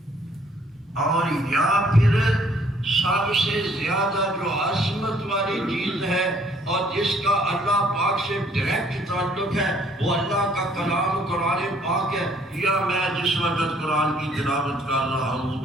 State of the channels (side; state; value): both; normal; correlation 0.62